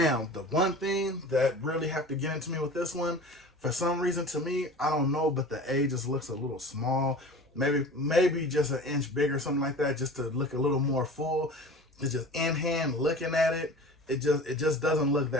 the one thing that really have to get into me with this one, for some reason to me, I don't know, but the A just looks a little small. Maybe just an inch bigger, something like that, just to look a little more full. It's just in hand looking at it. It just doesn't look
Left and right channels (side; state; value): both; normal; correlation 0.38